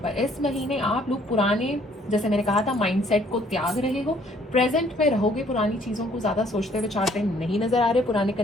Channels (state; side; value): normal; both; correlation 0.62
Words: पर इस महीने आप लोग पुराने, जैसे मैंने कहा था, माइंडसेट को त्याग रहे हो, प्रेजेंट में रहोगे, पुरानी चीज़ों को ज़्यादा सोचते विचारते नहीं नज़र आ रहे, पुराने